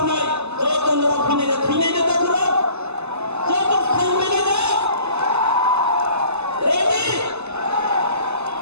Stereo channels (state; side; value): late; left; 0.80 ms